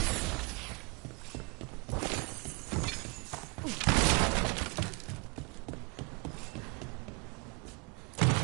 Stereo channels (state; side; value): quieter; left; 31.9 dB